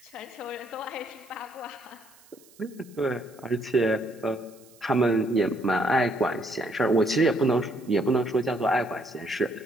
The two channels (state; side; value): noise; right; hiss, 27 dB below the sound